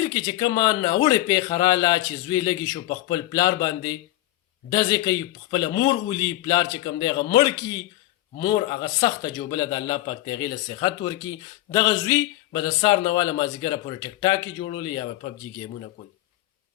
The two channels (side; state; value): right; quieter; 16.0 dB